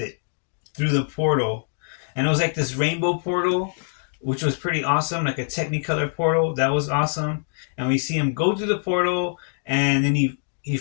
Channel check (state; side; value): silent; right; digital silence